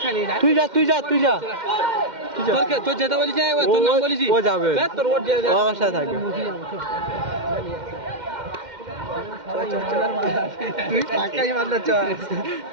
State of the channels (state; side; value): late; left; 2.1 ms